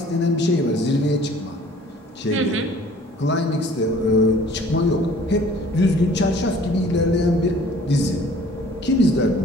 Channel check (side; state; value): both; normal; correlation 0.52